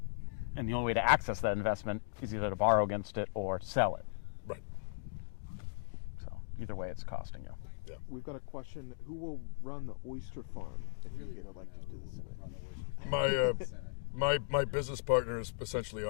the only way to access that investment is either to borrow against it or sell it. Right. So either way, it's costing you. Yeah. We've got a question. Who will run the Oyster farm if you get elected to the Senate? My business partner has essentially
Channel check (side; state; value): right; silent; digital silence